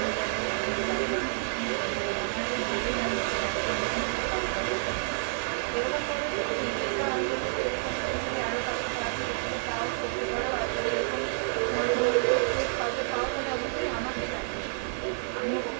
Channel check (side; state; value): left; silent; 58 dB below the other